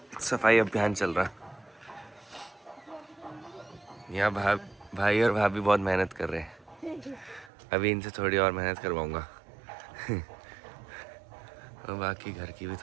सफाई अभियान चल रहा है। यहाँ भाई और भाभी बहुत मेहनत कर रहे हैं। अभी इनसे थोड़ी और मेहनत करवाऊँगा। और बाकी घर की भी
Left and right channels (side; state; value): left; drops out; at 7.5 s